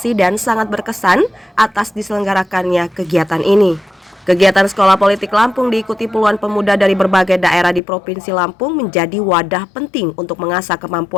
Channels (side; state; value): right; drops out; at 7.8 s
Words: dan sangat berkesan atas diselenggarakannya kegiatan ini. Kegiatan Sekolah Politik Lampung diikuti puluhan pemuda dari berbagai daerah di Provinsi Lampung menjadi wadah penting untuk mengasah